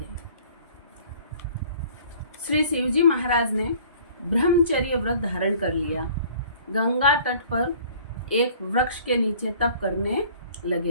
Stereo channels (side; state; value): both; inverted; correlation -0.52